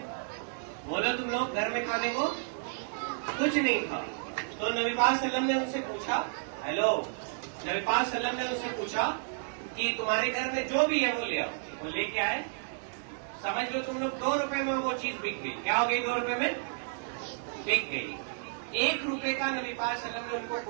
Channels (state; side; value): silent; left; digital silence